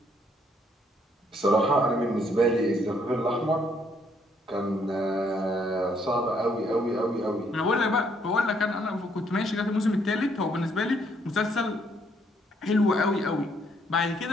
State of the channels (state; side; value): normal; both; correlation 0.69